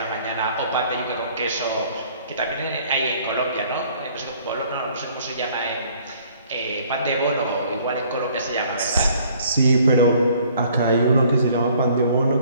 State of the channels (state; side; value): inverted; both; correlation -0.58